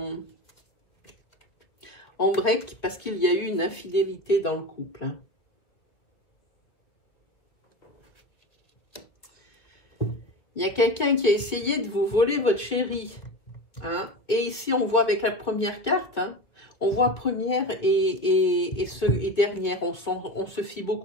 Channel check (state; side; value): late; right; 2.2 ms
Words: break parce qu'il y a eu une infidélité dans le couple. Hein. Il y a quelqu'un qui a essayé de vous voler votre chéri. Hein. Et ici, on voit avec la première carte, hein, on voit première et dernière. On se fie